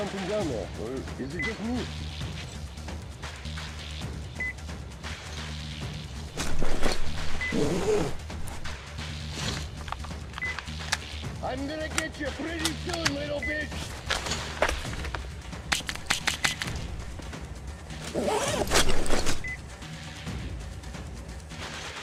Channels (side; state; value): both; identical; correlation 1.00